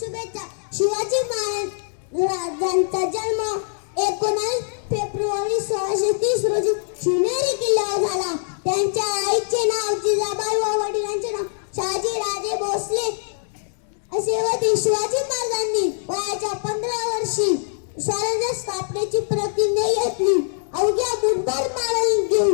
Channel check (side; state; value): right; silent; digital silence